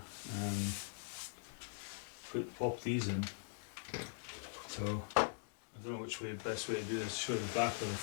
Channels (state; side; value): silent; right; digital silence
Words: and pop these in. So I don't know which way the best way to do this. Show the back or the